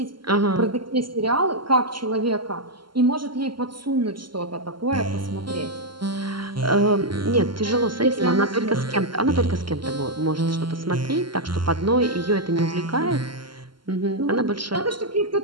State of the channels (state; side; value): late; left; 0.72 ms